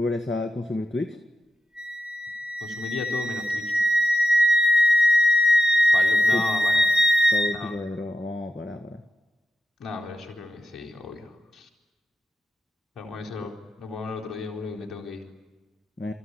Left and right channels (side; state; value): both; normal; correlation 0.88